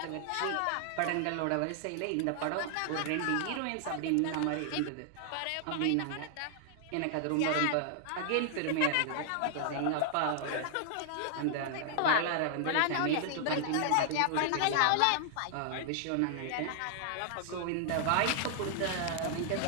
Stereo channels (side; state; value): both; different; correlation -0.01